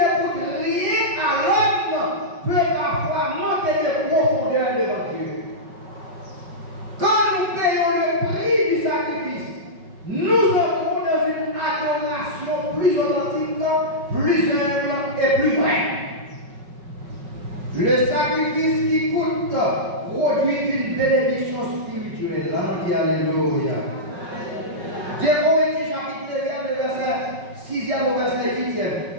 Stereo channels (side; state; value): left; late; 5.4 ms